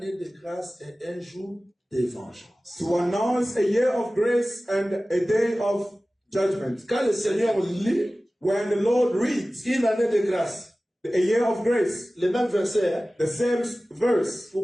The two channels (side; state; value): both; normal; correlation 0.97